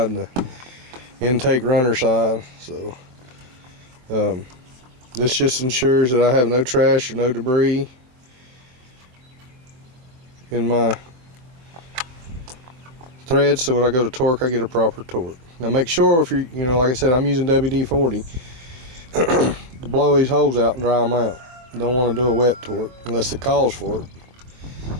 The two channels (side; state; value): left; late; 23 ms